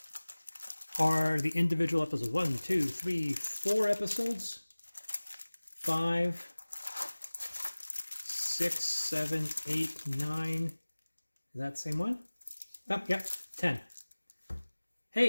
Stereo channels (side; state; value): both; inverted; correlation -1.00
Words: are the individual episodes. 1, 2, 3, 4 episodes. 5, 6, 7, 8, 9. Is that the same one? Oh, yep, 10.